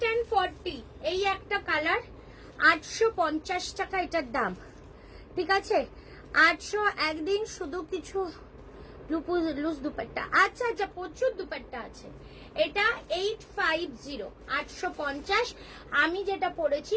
and 40, এই একটা কালার 850 টাকা এটার দাম। ঠিক আছে, 800। একদিন শুধু কিছু লুজ দুপাট্টা। আচ্ছা আচ্ছা, প্রচুর দুপাট্টা আছে। এটা 850, 850। আমি যেটা পরেছি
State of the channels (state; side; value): identical; both; correlation 1.00